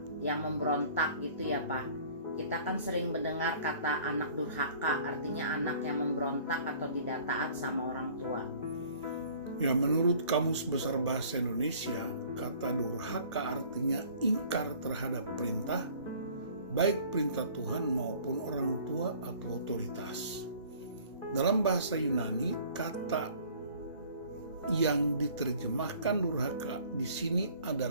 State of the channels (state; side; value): inverted; both; correlation -0.51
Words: yang memberontak gitu ya Pak. Kita kan sering mendengar kata anak durhaka, artinya anak yang memberontak atau tidak taat sama orang tua. Ya, menurut Kamus Besar Bahasa Indonesia, kata durhaka artinya ingkar terhadap perintah, baik perintah Tuhan maupun orang tua atau otoritas. Dalam bahasa Yunani, kata yang diterjemahkan durhaka di sini